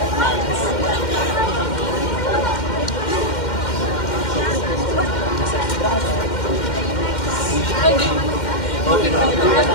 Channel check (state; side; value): late; right; 2.1 ms